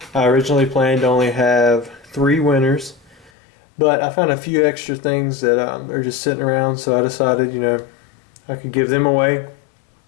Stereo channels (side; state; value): right; drops out; at 3.3 s